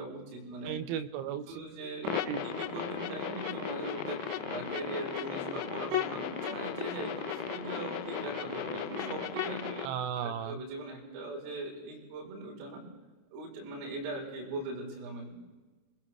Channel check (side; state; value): left; late; 29 ms